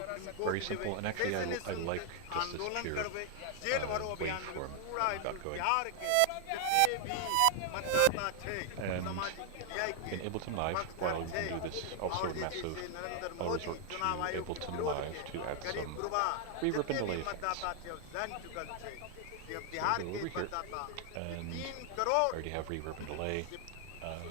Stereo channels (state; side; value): different; both; correlation 0.00